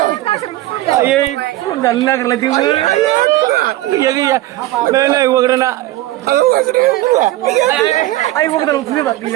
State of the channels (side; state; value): left; quieter; 16.3 dB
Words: Ayo, belum jalan nak lagi tu. Iya, nah, gua kerana. Ayo, gua kerana belum bak,